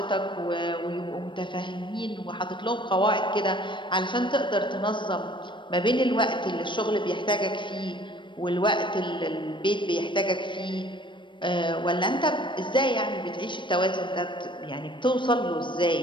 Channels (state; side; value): late; right; 0.23 ms